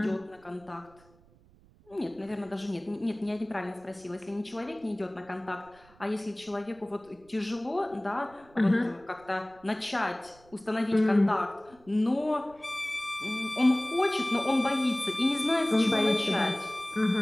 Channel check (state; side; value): noise; right; rumble, 28 dB below the sound